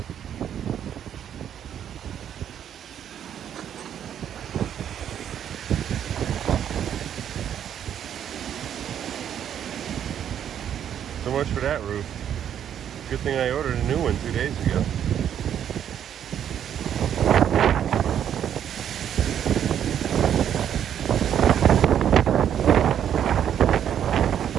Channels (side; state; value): left; quieter; 9.5 dB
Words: So much for that roof. Good thing I ordered a new one 2 days ago.